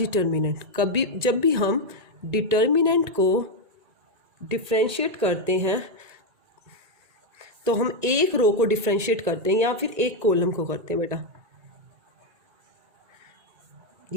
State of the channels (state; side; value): late; left; 1.9 ms